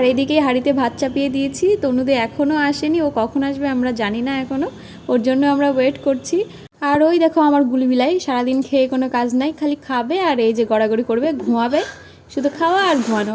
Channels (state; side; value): identical; both; correlation 1.00